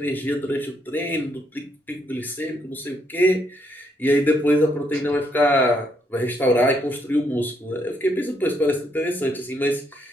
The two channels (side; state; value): both; normal; correlation 0.74